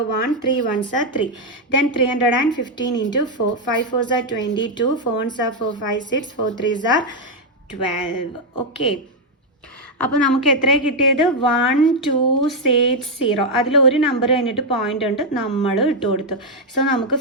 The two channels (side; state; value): both; normal; correlation 0.01